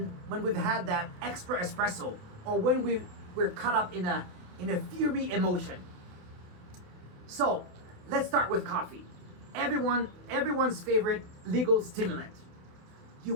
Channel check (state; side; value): late; left; 28 ms